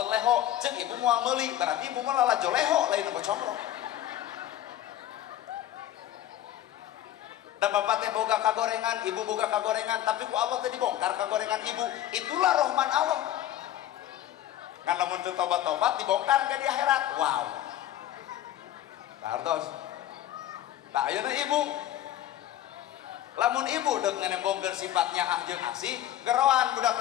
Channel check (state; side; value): quieter; right; 12.7 dB